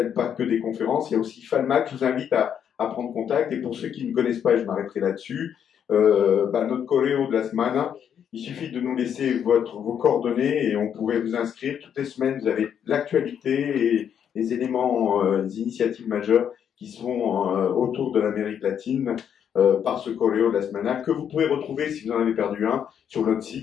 pas que des conférences. Il y a aussi FALMAC. Je vous invite à prendre contact, et pour ceux qui ne connaissent pas, et je m'arrêterai là-dessus, notre choréo de la semaine, il suffit de nous laisser vos coordonnées et on pourrait vous inscrire. Toutes les semaines, vous avez l'actualité et les éléments, les initiatives majeures qui sont autour de l'Amérique latine par ce choréo de la semaine, que vous pouvez retrouver, si vous en avez perdu un, sur notre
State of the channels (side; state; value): right; quieter; 8.6 dB